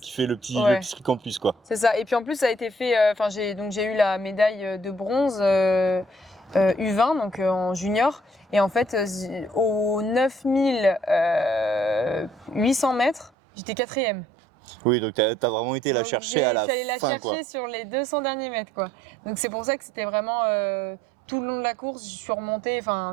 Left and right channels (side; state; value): left; drops out; at 13.3 s